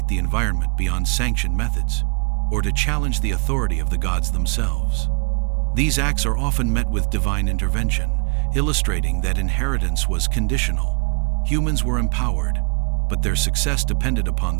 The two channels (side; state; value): left; quieter; 35.3 dB